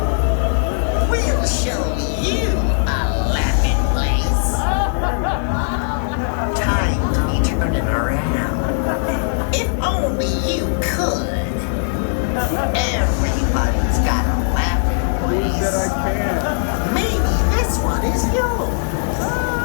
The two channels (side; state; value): right; silent; digital silence